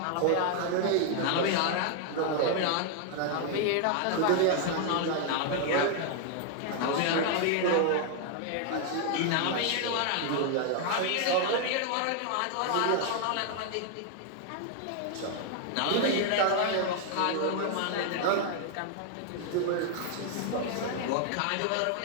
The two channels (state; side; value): different; both; correlation 0.00